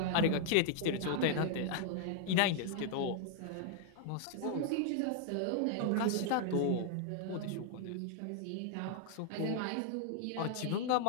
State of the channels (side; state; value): both; different; correlation 0.00